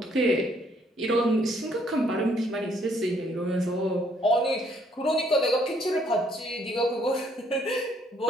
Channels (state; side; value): normal; both; correlation 0.66